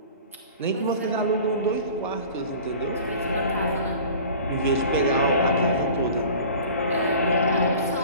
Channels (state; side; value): inverted; both; correlation -0.42